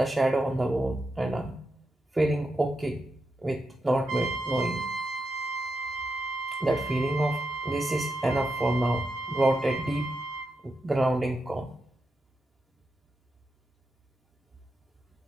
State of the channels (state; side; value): normal; both; correlation 0.86